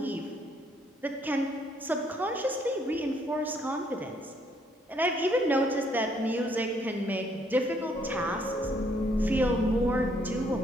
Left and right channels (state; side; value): normal; both; correlation 0.68